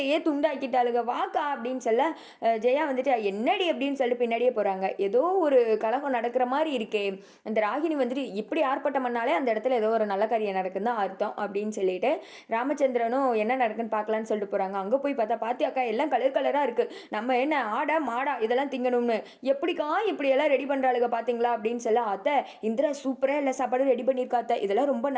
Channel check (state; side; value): identical; both; correlation 1.00